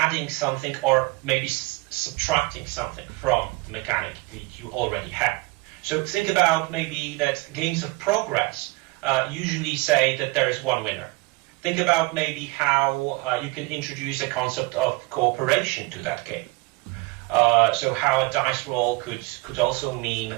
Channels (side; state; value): left; quieter; 24.2 dB